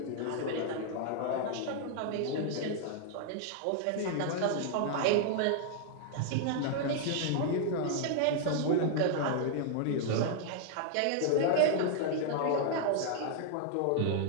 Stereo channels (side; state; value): both; different; correlation -0.01